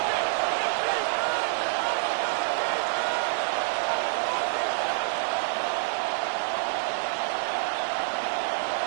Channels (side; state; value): left; silent; digital silence